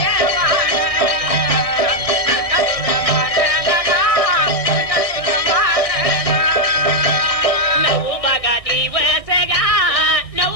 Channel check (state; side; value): late; right; 1.7 ms